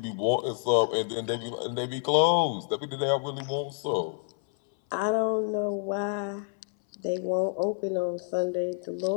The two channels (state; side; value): silent; right; 59 dB below the other